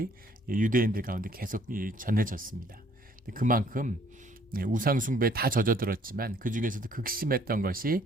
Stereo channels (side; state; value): both; normal; correlation 0.61